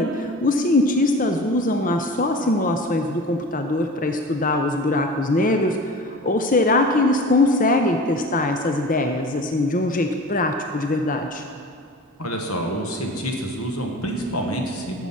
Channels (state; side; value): normal; both; correlation 0.37